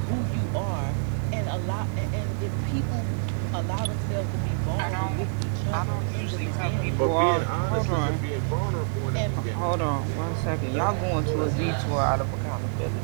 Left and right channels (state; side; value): silent; left; 60 dB below the other